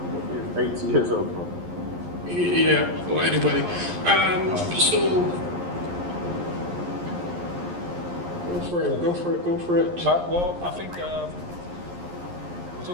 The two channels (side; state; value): left; late; 11 ms